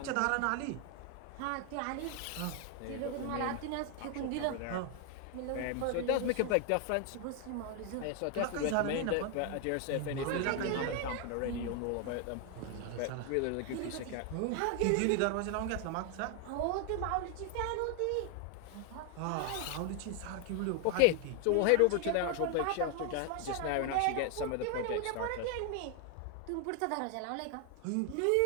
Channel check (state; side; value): different; both; correlation 0.01